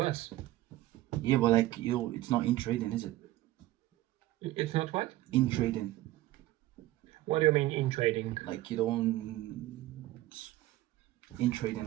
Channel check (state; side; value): quieter; left; 16.1 dB